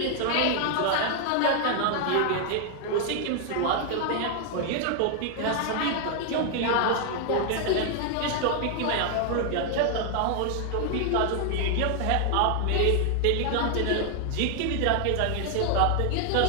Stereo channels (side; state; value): both; different; correlation 0.00